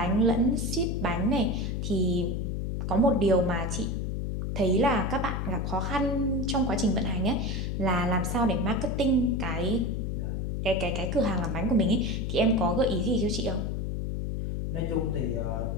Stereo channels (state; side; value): noise; left; hum, 2 dB below the sound